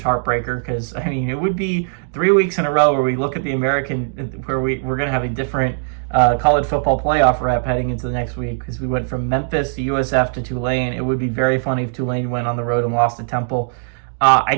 heartbreaker because, I mean, it would be 3 weeks in a row where we look at the American, where we're going to have a different college football playoff rep heading into the next week because we went from Memphis to USF to Tulane. It would be very funny if Tulane went on the road and lost to Temple. I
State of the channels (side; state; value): left; silent; digital silence